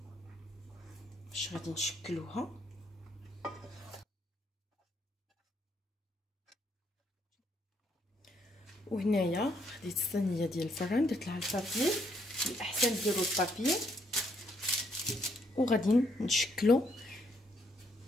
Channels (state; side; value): normal; both; correlation 0.72